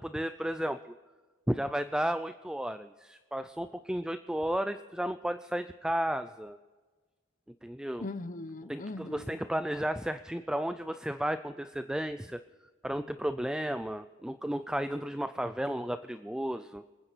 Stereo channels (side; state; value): both; normal; correlation 0.94